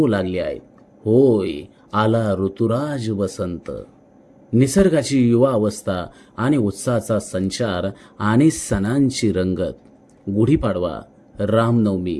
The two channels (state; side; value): identical; both; correlation 1.00